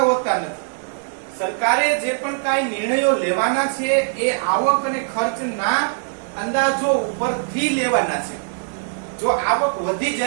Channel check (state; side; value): silent; left; digital silence